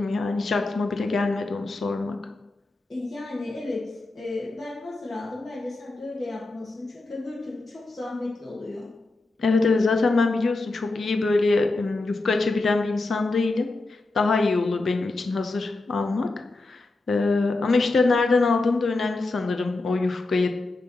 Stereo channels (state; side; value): quieter; right; 3.2 dB